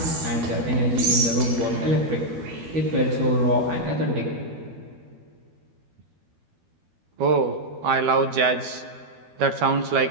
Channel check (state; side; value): late; left; 12 ms